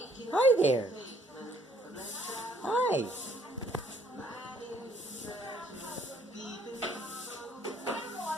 Hi there. Hi.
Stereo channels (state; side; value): normal; both; correlation 0.64